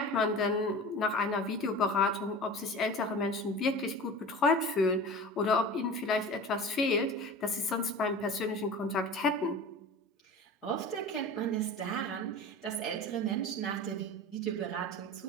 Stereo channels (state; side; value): normal; both; correlation 0.35